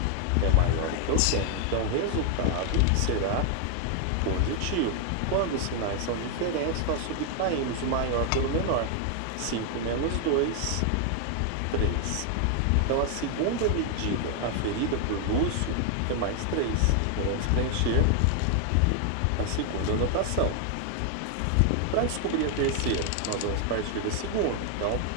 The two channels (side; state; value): both; different; correlation 0.00